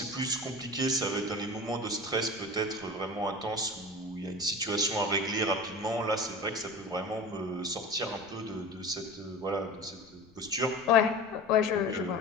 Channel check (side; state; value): left; noise; rumble, 27 dB below the sound